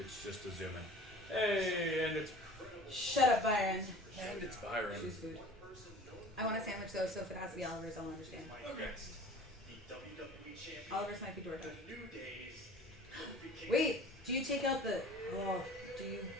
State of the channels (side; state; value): both; normal; correlation 0.44